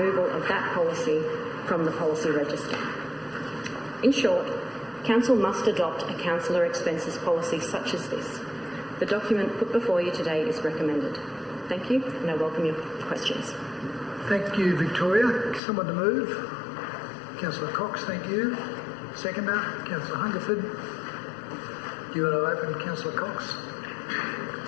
of that policy from the policy register. In short, Council must adopt a councillor expenses policy such as this. The document put before you today is recommended. Thank you, and I welcome your questions. Thank you, Victoria. Someone to move? Councillor Cox, thank you. Seconder, Councillor Hungerford. Do you want to open, Councillor Cox?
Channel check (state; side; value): drops out; right; at 15.6 s